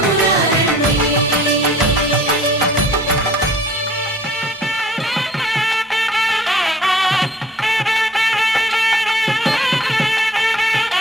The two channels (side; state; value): both; normal; correlation 0.53